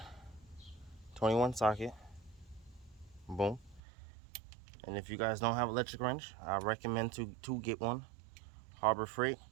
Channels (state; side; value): drops out; left; at 3.8 s